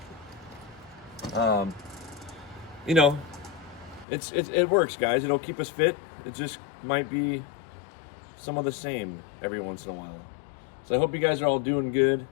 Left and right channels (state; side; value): drops out; right; at 4.0 s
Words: You know, it works, guys. It'll keep us fit. It just might be some of the same every once in a while. So I hope you guys are all doing good.